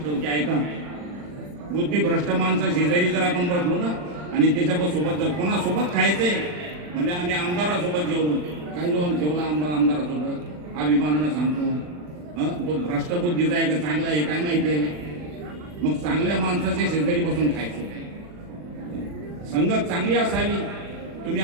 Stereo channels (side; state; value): left; late; 40 ms